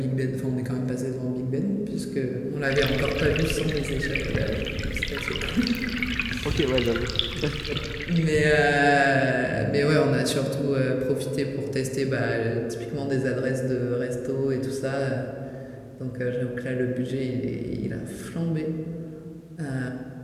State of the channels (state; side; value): identical; both; correlation 1.00